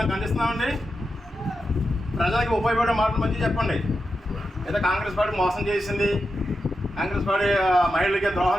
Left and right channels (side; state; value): both; normal; correlation 0.88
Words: ఖండిస్తున్నామండి. ప్రజలకి ఉపయోగపడే మాటలు మంచిగా చెప్పండి. ఏదో కాంగ్రెస్ పార్టీ మోసం చేసింది, కాంగ్రెస్ పార్టీ మహిళలకి